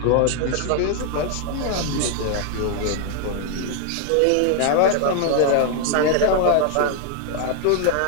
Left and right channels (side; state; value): both; different; correlation 0.00